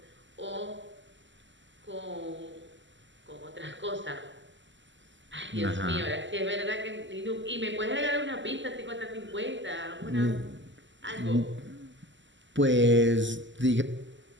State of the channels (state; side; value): late; left; 0.54 ms